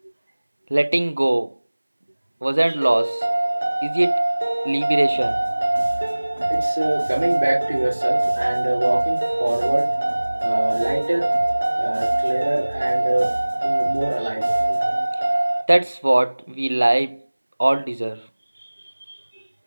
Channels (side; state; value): both; inverted; correlation -1.00